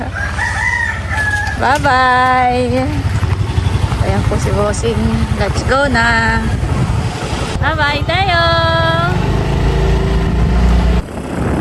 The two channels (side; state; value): both; identical; correlation 1.00